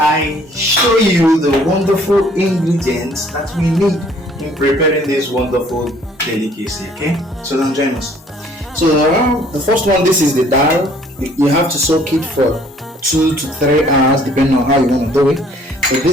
show you the wonderful ingredients that we need in preparing this wonderful delicacy. Okay, so then join us. So the first one, this is the dal. You have to soak it for 2 to 3 hours depending on how you want to do it. So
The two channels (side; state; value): both; normal; correlation 0.58